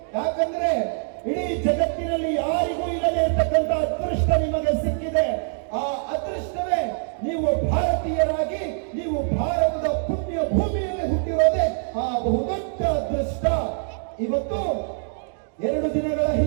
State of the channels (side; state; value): left; silent; digital silence